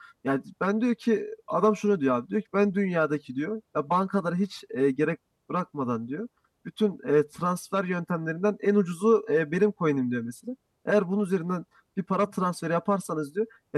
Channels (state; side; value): identical; both; correlation 1.00